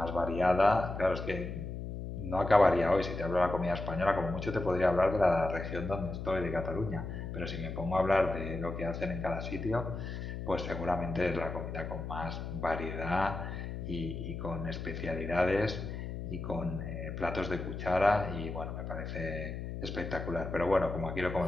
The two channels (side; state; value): left; noise; hum, 6 dB below the sound